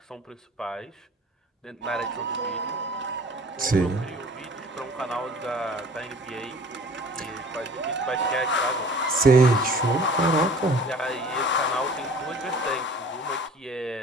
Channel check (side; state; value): both; normal; correlation 0.47